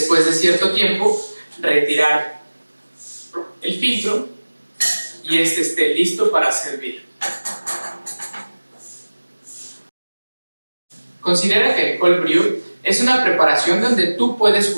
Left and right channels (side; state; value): both; inverted; correlation -1.00